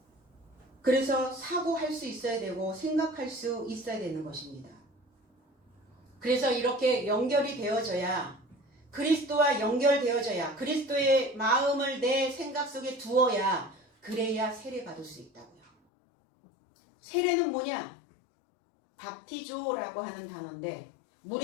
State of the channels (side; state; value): right; drops out; at 15.7 s